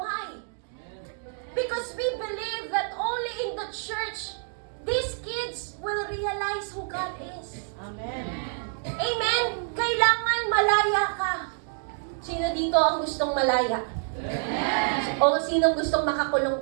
Because we believe that only in the church, these kids will realize who God is. Amen. Amen? Kailangan malaya ka. Sino dito ang gustong malaya? O sinong gustong makakulong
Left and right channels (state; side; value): silent; left; 59 dB below the other